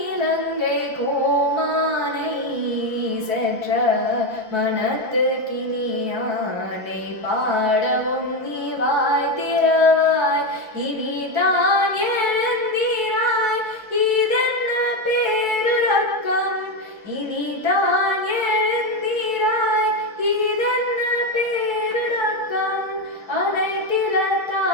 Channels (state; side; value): late; left; 1.3 ms